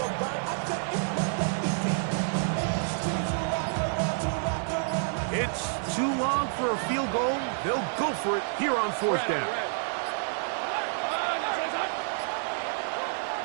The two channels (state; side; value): silent; left; digital silence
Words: It's too long for a field goal. They'll go for it here on fourth down.